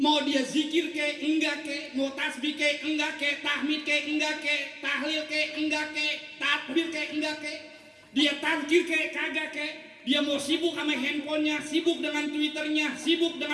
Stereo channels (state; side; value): identical; both; correlation 1.00